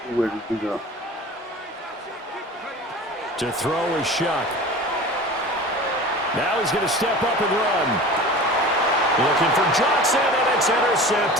Where did he go? To throw is Shuck. Now he's going to step up and run. Looking for Johnson, and it's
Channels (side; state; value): both; normal; correlation 0.37